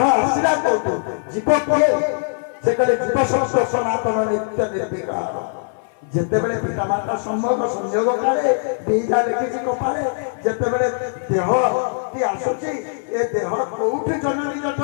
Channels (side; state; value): right; silent; 57 dB below the other